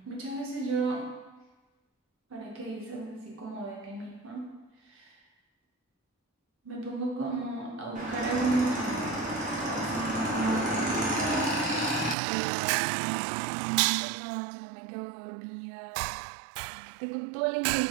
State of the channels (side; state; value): left; drops out; at 12.2 s